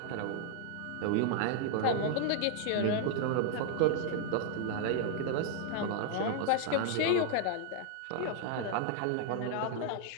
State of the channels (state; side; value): different; both; correlation 0.00